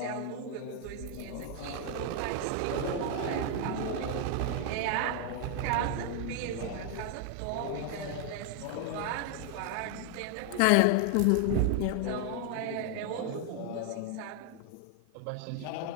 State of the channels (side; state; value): both; different; correlation 0.00